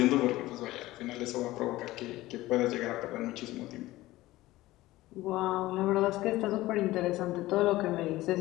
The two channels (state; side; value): quieter; right; 17.5 dB